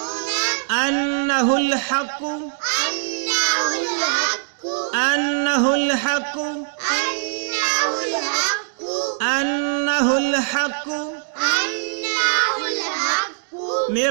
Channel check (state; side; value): silent; left; digital silence